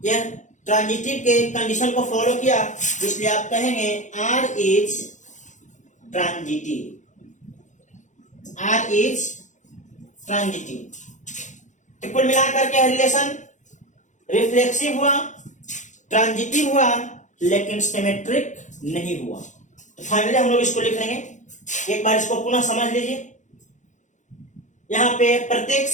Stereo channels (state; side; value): late; right; 0.35 ms